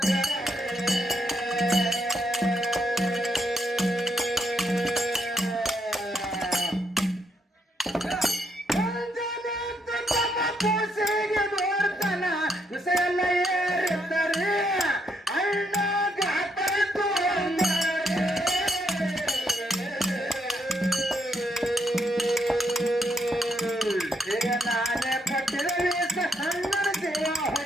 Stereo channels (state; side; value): normal; both; correlation 0.76